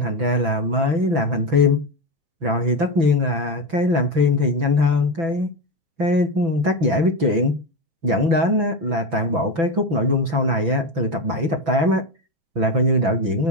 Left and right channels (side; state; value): left; late; 6.0 ms